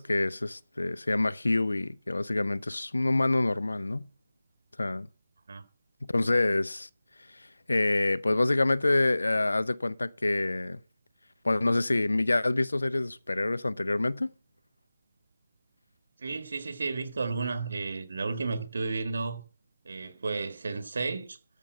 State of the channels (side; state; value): both; inverted; correlation -0.97